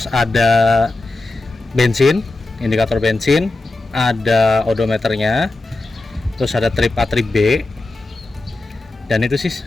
ada bensin, indikator bensin, ada odometernya, terus ada trip A, trip B, dan itu sih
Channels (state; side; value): quieter; right; 3.0 dB